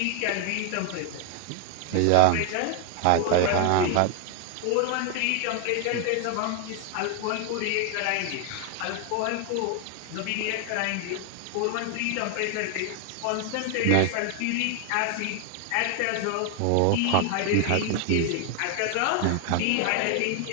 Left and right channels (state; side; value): different; both; correlation 0.00